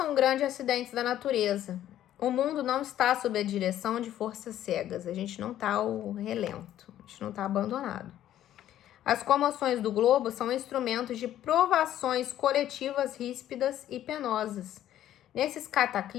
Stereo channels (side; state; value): right; quieter; 12.1 dB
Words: grandes acidentes da natureza. O mundo não está sob a direção de forças cegas. A gente não está ao relento, a gente não está abandonado. As comoções do globo são instrumentos de provações coletivas ríspidas e penosas. Nesses